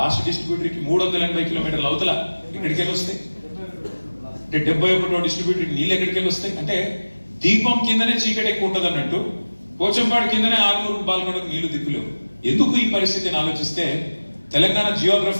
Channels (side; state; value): both; inverted; correlation -1.00